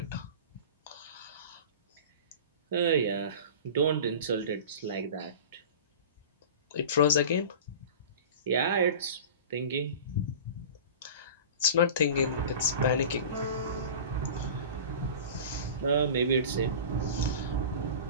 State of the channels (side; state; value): both; inverted; correlation -0.35